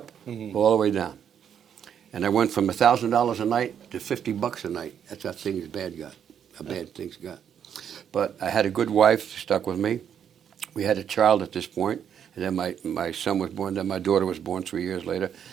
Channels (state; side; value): quieter; left; 8.5 dB